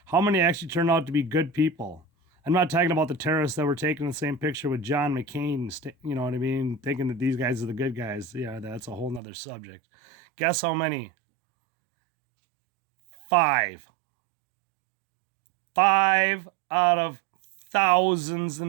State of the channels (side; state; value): left; drops out; at 9.2 s